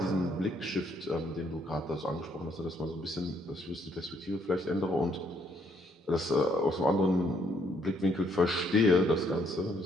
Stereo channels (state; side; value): normal; both; correlation 0.70